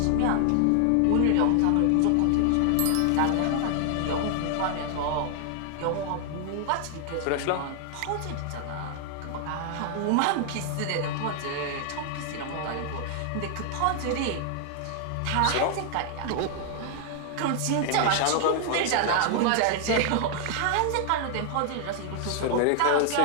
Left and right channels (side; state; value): both; different; correlation 0.00